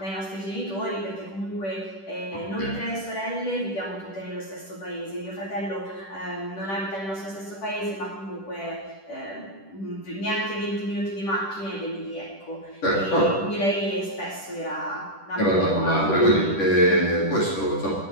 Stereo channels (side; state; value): right; late; 10 ms